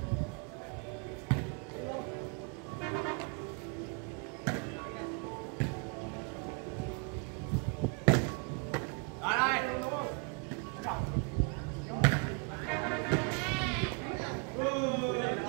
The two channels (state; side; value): quieter; left; 35.4 dB